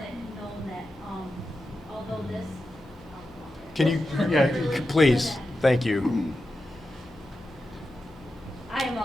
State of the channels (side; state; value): both; normal; correlation 0.90